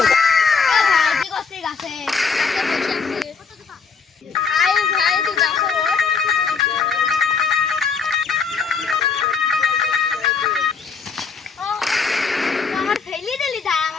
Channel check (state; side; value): quieter; right; 5.5 dB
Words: কি করছিস গাছে? ভাই ভাই তুই গাছে ওঠ। আমার ফেলে দিলি, তাই